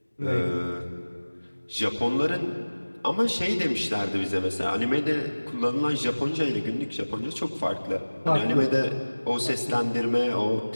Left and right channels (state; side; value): inverted; both; correlation -1.00